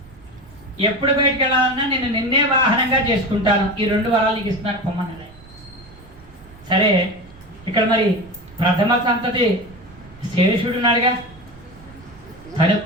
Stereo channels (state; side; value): noise; right; rumble, 23 dB below the sound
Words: ఎప్పుడు బయటకు వెళ్ళాలన్నా నేను నిన్నే వాహనంగా చేసుకుంటాను. ఈ 2 వరాలు నీకు ఇస్తున్నాను పొమ్మన్నాడు. సరే ఇక్కడ మరి ప్రథమ సంతతి శేషుడు ఉన్నాడుగా, తను